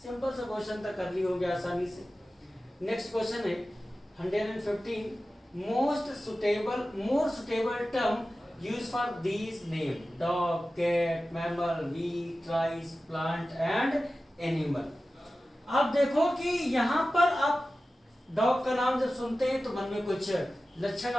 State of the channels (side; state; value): both; normal; correlation 0.95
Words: सिंपल सा क्वेश्चन था, कर ली हो गया आसानी से। नेक्स्ट क्वेश्चन है 115, more suitable term use for these name, dog, cat, mammal, wheat, rice, plant and animal. आप देखो कि यहाँ पर आप डॉग का नाम जब सुनते हैं तो मन में कुछ लक्षण